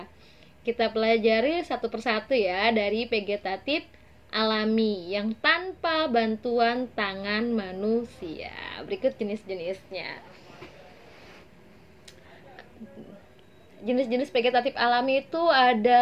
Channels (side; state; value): both; identical; correlation 1.00